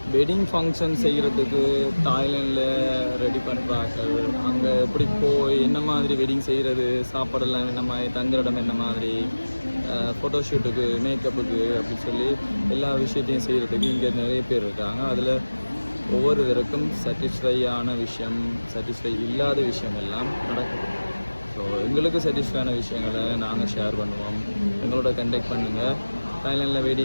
wedding function செய்கிறதுக்கு தாய்லாண்டில் ready பண்ணுறாங்க. அங்கே எப்படி போய் என்ன மாதிரி வெட்டிங் செய்கிறது, சாப்பாடெல்லாம் என்ன மாதிரி, தங்குற இடம் என்ன மாதிரி, ஃபோட்டோஷூட்டுக்கு, மேக்கப்புக்கு அப்படின்னு சொல்லி எல்லா விஷயத்தையும் செய்கிறதுக்கு இங்கே நிறைய பேர் இருக்காங்க. அதில் ஒவ்வொருவருக்கும் சாட்டிஸ்ஃபையான விஷயம், சாட்டிஸ்ஃபை இல்லாத விஷயம் எல்லாம் நடக்குது. ஸோ எங்களுக்கு சாட்டிஸ்ஃபையான விஷயங்களை நாங்கள் ஷேர் பண்ணுவோம். எங்களோட கண்டெக்ட் பண்ணுங்கள். தாய்லாண்டில்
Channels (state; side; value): inverted; both; correlation -1.00